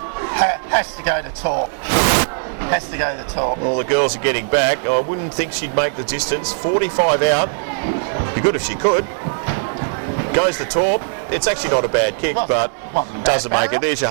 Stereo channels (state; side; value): silent; left; 60 dB below the other